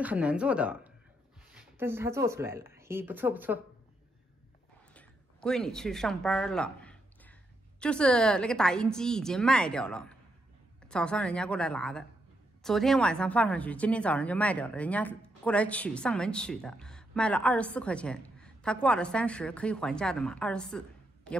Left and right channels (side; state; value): both; normal; correlation 0.80